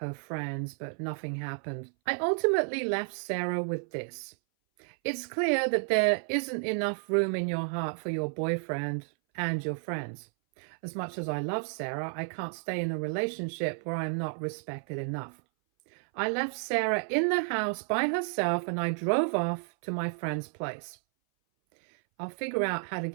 friends, but nothing happened. I ultimately left Sarah with this. It's clear that there isn't enough room in your heart for your boyfriend and your friends. As much as I love Sarah, I can't stay in a relationship where I'm not respected enough. I left Sarah in the house by herself and I drove off to my friend's place. I'll figure out how to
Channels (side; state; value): left; silent; 57 dB below the other